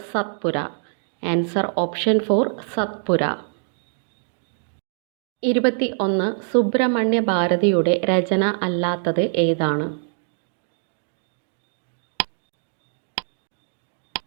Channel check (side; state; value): left; silent; digital silence